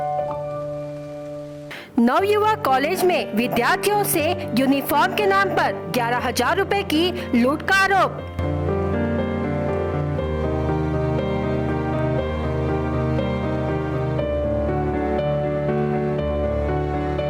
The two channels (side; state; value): both; identical; correlation 1.00